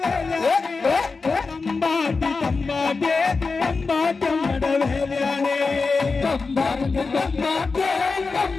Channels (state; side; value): quieter; right; 4.3 dB